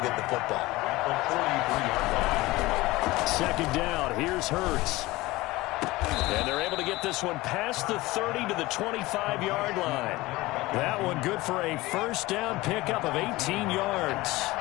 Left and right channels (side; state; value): right; quieter; 19.8 dB